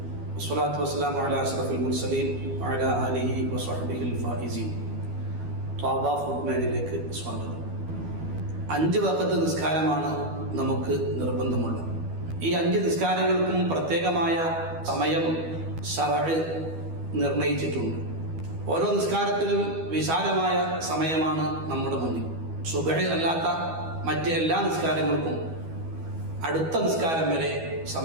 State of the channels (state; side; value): late; left; 12 ms